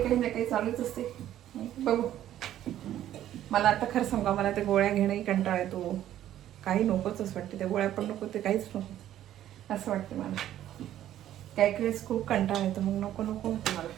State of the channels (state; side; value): quieter; left; 12.1 dB